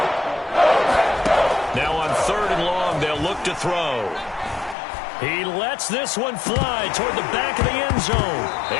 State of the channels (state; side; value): drops out; right; at 4.8 s